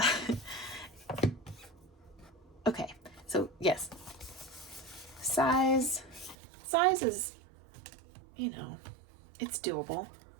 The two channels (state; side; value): drops out; left; at 6.4 s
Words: Okay, so yes, size is, you know, it's doable.